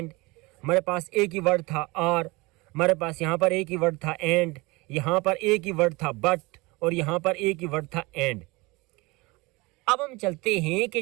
हमारे पास एक ही वर्ड था आर, हमारे पास यहाँ पर एक ही वर्ड था एंड, यहाँ पर एक ही वर्ड था बट और यहाँ पर एक ही वर्ड था एंड। अब हम चलते हैं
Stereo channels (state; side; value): quieter; left; 23.9 dB